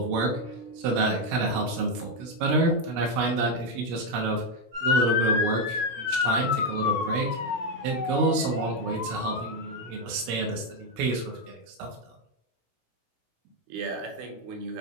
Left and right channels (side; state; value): left; late; 16 ms